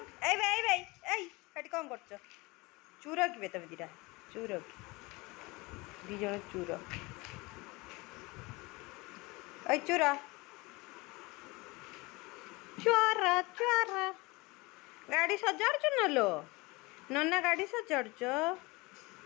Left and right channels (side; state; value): right; quieter; 24.1 dB